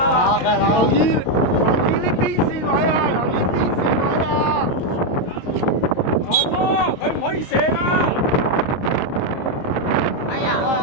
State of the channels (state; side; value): late; right; 23 ms